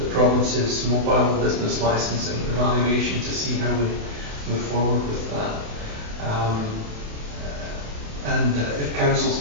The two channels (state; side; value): late; left; 28 ms